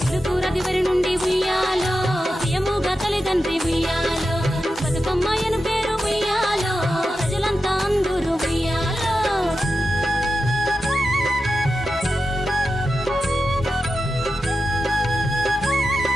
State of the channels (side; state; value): both; normal; correlation 0.90